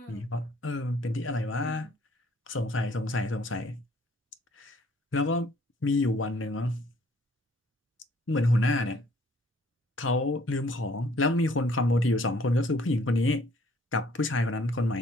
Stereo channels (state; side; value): normal; both; correlation 0.60